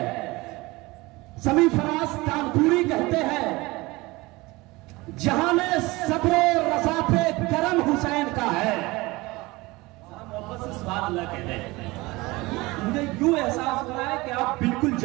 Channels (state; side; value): quieter; left; 22.0 dB